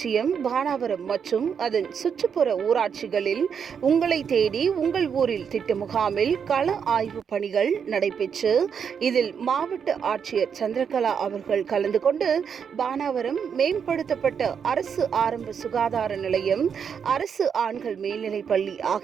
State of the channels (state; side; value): quieter; left; 7.1 dB